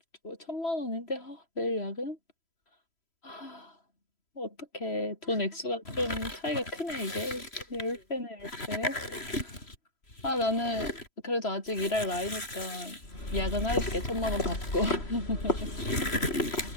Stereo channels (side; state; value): right; late; 3.0 ms